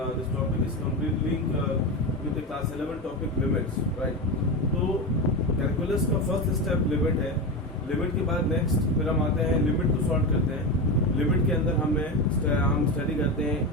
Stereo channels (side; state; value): both; normal; correlation 0.19